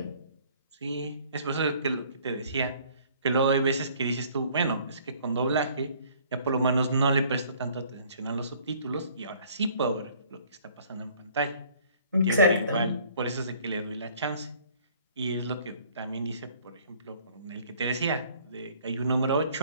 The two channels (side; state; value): both; inverted; correlation -0.56